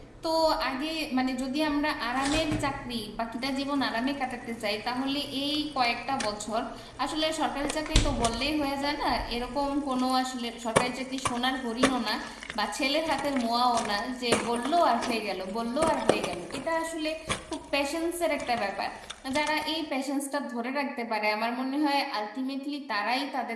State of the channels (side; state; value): both; identical; correlation 1.00